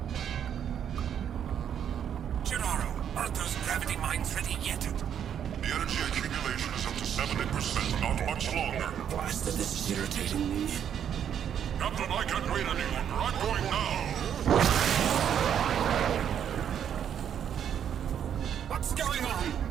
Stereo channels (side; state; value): left; quieter; 9.0 dB